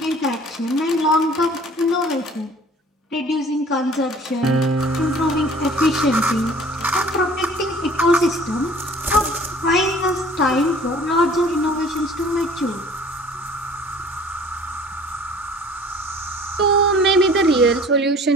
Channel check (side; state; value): both; normal; correlation 0.50